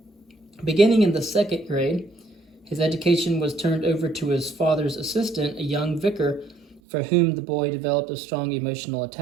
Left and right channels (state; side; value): drops out; left; at 6.8 s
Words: Beginning in the second grade, his education was turned over to his father's assistant, a young vicar, for whom the boy developed a strong emotional